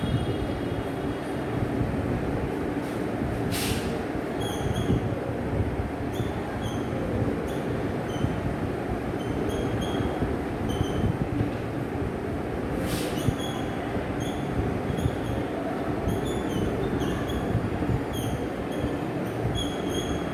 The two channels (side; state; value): both; identical; correlation 1.00